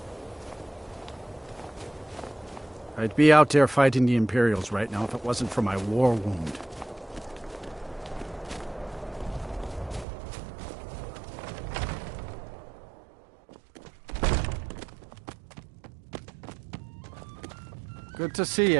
I'd be out there fighting the Imperials right now if it wasn't for my war wound. Good to see you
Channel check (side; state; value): left; drops out; at 10.1 s